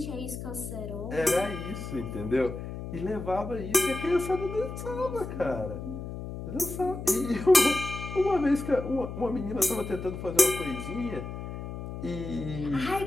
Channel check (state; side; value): noise; left; hum, 8 dB below the sound